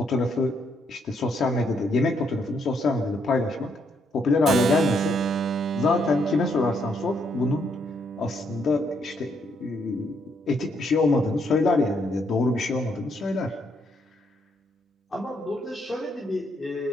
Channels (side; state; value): both; normal; correlation 0.74